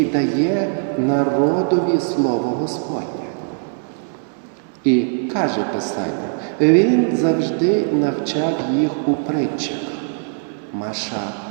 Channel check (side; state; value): left; silent; digital silence